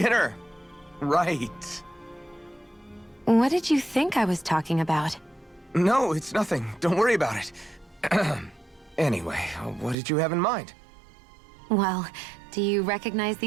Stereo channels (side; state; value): left; drops out; at 10.0 s